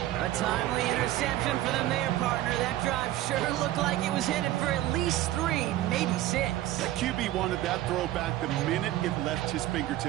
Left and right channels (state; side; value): quieter; left; 14.6 dB